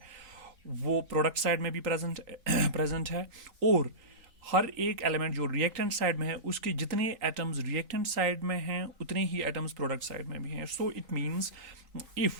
वो प्रोडक्ट साइड में भी प्रेजेंट है, और हर एक एलिमेंट जो रिएक्टेंट साइड में है उसके जितने एटम्स रिएक्टेंट साइड में हैं उतने ही एटम्स प्रोडक्ट साइड में भी हैं। So it means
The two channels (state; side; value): late; left; 3.8 ms